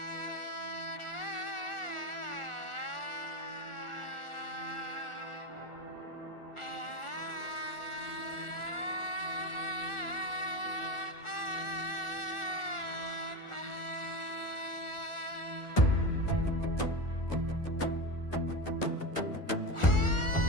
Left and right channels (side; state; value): right; late; 1.4 ms